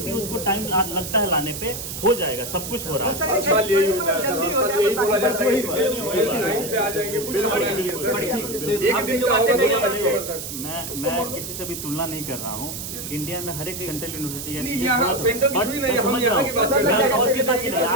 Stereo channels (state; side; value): noise; right; hiss, 7 dB below the sound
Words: है, उसको टाइम लगता है लाने पे, हो जाएगा, सब कुछ हो रहा है। जल्दी हो जाए मैं किसी से भी तुलना नहीं कर रहा हूँ। इंडिया में हर एक सेंट्रल यूनिवर्सिटी